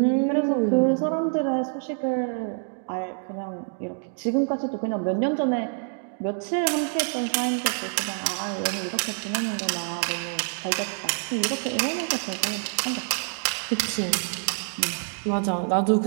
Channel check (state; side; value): silent; left; 57 dB below the other